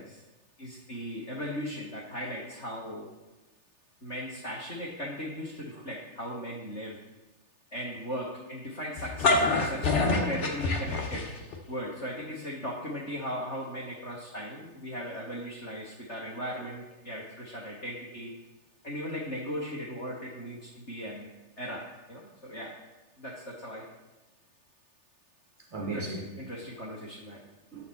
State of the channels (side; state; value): right; late; 3.4 ms